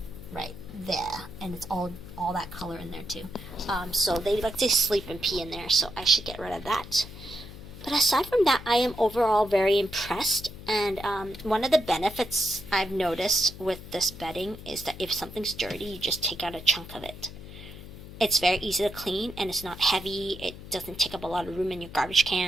right there, and it's all that color in there too. So they like to sleep and pee in there, so I should get rid of that. But aside from that, I am overall very impressed, and one of the benefits I've noticed with this bedding is that if something's dirty, you just take out a chunk of it. It's very easy to clean, and it's not heavy. It doesn't take up a lot of room in your garbage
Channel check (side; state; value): left; noise; hum, 14 dB below the sound